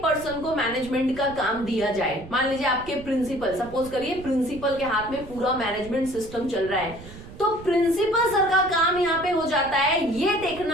को मैनेजमेंट का काम दिया जाए, मान लीजिए आपके प्रिंसिपल, सपोज करिए प्रिंसिपल के हाथ में पूरा मैनेजमेंट सिस्टम चल रहा है, तो प्रिंसिपल सर का काम यहाँ पे हो जाता है ये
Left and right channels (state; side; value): noise; right; rumble, 16 dB below the sound